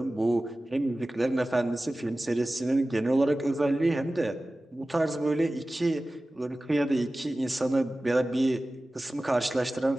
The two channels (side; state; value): both; normal; correlation 0.96